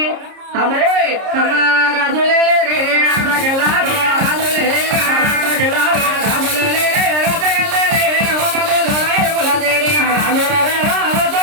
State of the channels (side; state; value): left; late; 30 ms